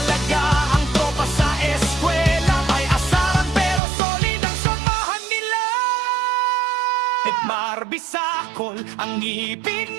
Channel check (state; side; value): drops out; left; at 3.8 s